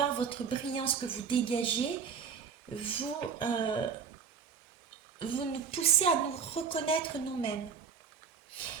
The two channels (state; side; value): quieter; left; 6.4 dB